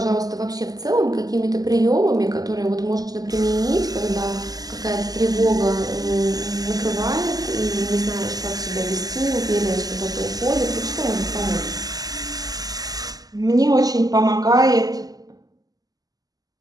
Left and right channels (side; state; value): left; late; 0.18 ms